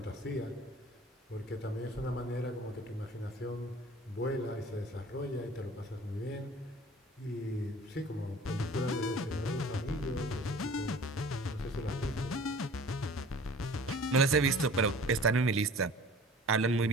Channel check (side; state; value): both; normal; correlation 0.45